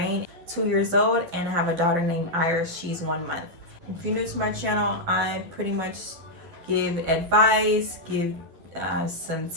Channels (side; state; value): left; late; 12 ms